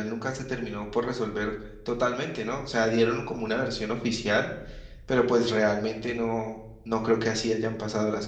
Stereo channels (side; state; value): both; identical; correlation 1.00